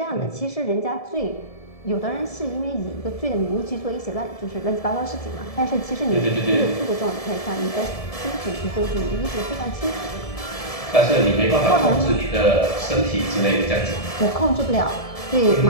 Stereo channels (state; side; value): late; right; 1.7 ms